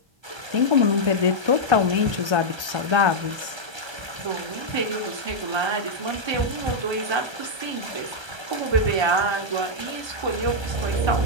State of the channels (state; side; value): late; left; 1.3 ms